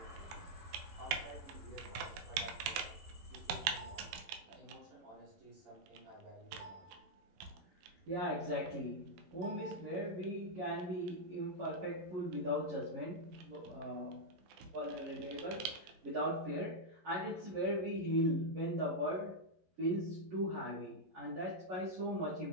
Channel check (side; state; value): left; late; 12 ms